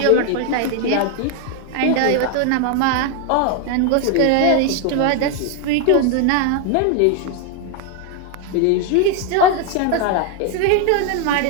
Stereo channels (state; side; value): different; both; correlation 0.01